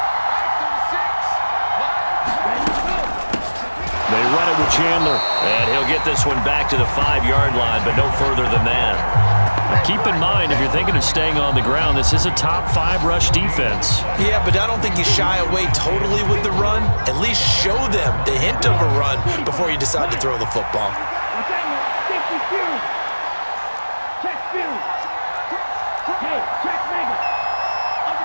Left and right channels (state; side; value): inverted; both; correlation -1.00